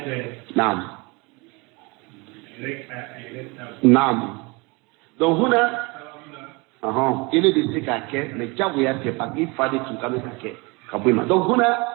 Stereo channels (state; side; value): quieter; left; 27.2 dB